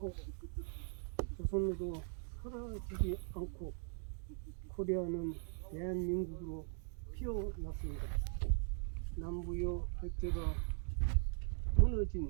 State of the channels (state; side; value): silent; left; 51 dB below the other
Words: 조선으로 사라지지 않고 코리아는 대한민국으로 피어났습니다. 남부여 백제가 무너진